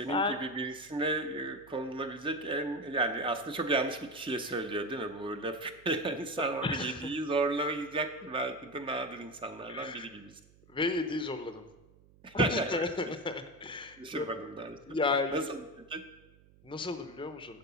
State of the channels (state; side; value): noise; right; hum, 26 dB below the sound